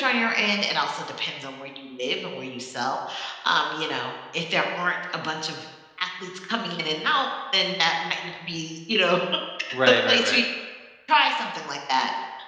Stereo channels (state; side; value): identical; both; correlation 1.00